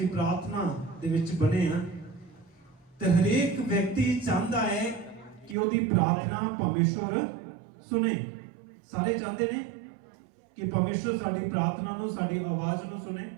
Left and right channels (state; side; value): drops out; left; at 5.6 s